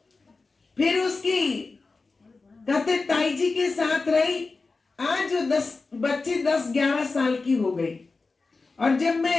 फिर उसकी कहते ताई जी के साथ रही। आज वो बच्ची 10-11 साल की हो गई और जब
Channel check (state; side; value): quieter; right; 3.9 dB